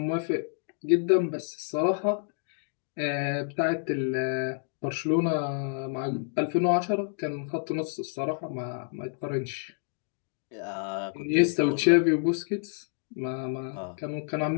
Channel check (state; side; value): silent; right; digital silence